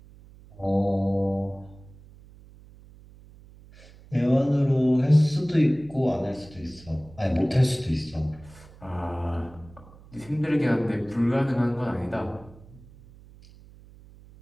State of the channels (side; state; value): right; noise; hum, 22 dB below the sound